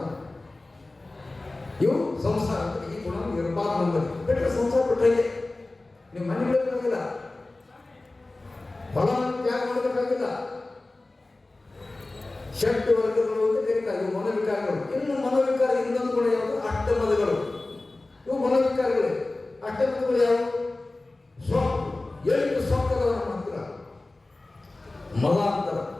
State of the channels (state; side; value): quieter; right; 3.0 dB